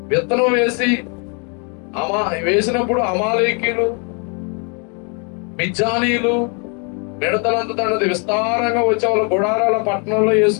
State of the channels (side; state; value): right; quieter; 36.6 dB